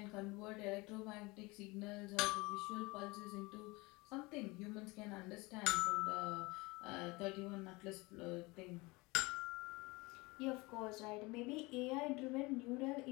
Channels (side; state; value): right; quieter; 24.1 dB